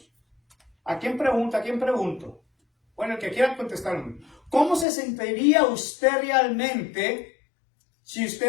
¿A quién pregunta? ¿A quién pregunto? Bueno, el que quiera contestar. ¿Cómo se sentiría usted realmente si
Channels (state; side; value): drops out; right; at 4.9 s